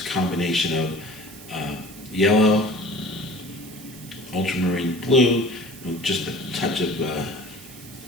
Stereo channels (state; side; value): noise; right; hiss, 17 dB below the sound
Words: a combination of yellow, ultramarine blue, with just a touch of